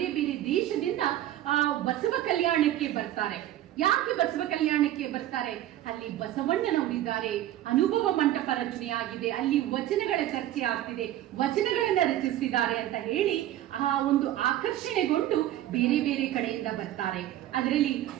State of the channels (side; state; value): left; quieter; 13.4 dB